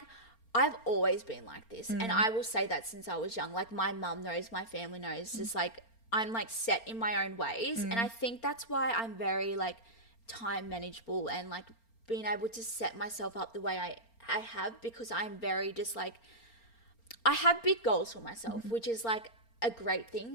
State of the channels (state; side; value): late; right; 4.4 ms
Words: I've always been like this, and I will say that since I was young. Like my mum knows, my family knows, just like I'm like set in my own ways, and I think that's why I'm very like time manageable and like being able to set myself up the way I have, because I'm very just like, I have big goals for myself, which is like a great